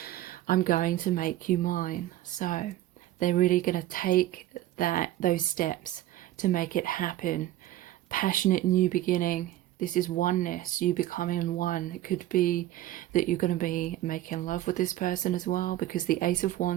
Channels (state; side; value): quieter; left; 14.4 dB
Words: I'm going to make you mine. So they're really going to take those steps to make it happen. Passionate new beginning. This is oneness, you becoming one. It could be that you're going to be making love with this person as well, because the Ace of